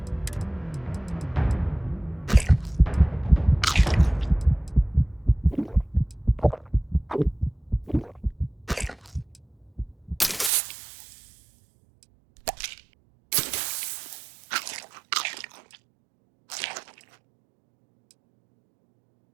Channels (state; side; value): drops out; left; at 10.5 s